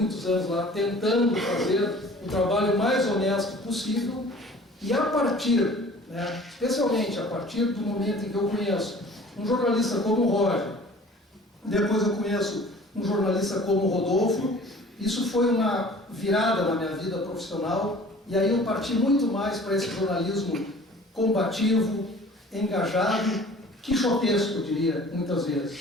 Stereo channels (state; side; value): normal; both; correlation 0.47